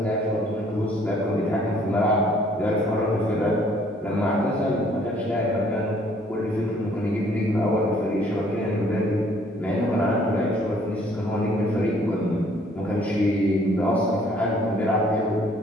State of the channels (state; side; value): normal; both; correlation 0.61